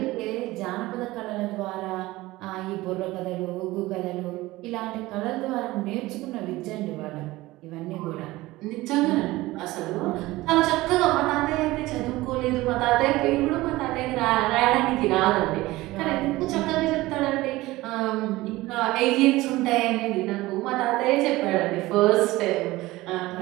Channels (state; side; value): quieter; left; 18.8 dB